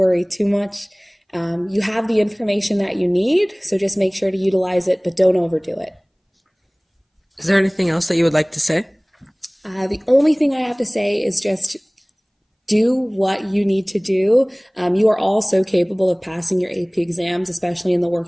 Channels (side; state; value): both; identical; correlation 1.00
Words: too much. You have the information that you need, so just make sure to utilize it, but don't overdo it. Is there anything else that you would like to say? The only thing I have to say is just do what you need to do. You are all so capable of passing your AP exams, especially in the